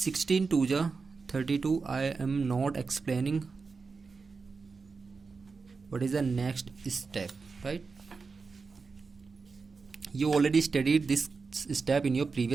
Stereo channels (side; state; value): left; quieter; 4.6 dB